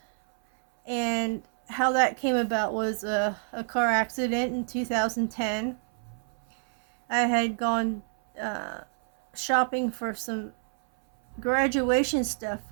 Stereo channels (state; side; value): silent; left; 60 dB below the other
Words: and how that came about was a car accident in 2010. I had gone shopping for some graduation stuff